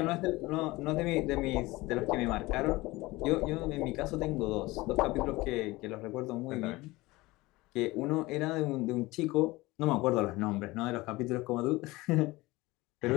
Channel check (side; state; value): right; quieter; 20.7 dB